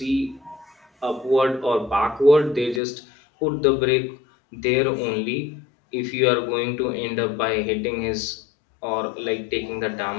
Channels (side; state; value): right; drops out; at 2.8 s